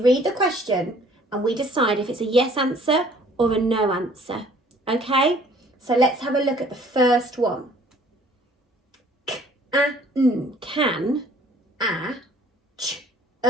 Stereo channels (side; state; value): both; normal; correlation 0.56